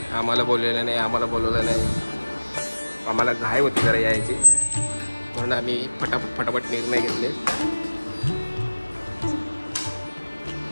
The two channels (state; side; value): inverted; both; correlation -1.00